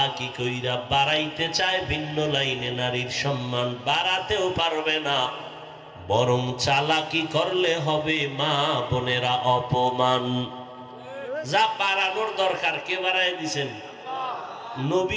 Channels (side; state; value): both; identical; correlation 1.00